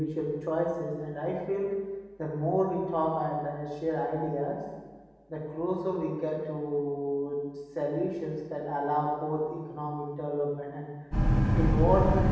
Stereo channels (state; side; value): identical; both; correlation 1.00